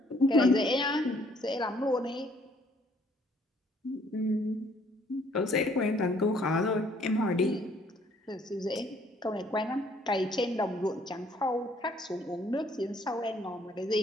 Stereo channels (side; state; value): both; normal; correlation 0.63